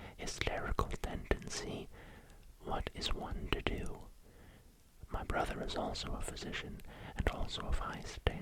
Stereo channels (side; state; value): both; identical; correlation 1.00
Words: hysterical tendency, what is one to do? My brother is also a physician, and also of high